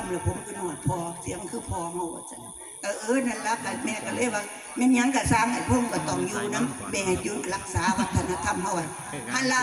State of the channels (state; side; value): identical; both; correlation 1.00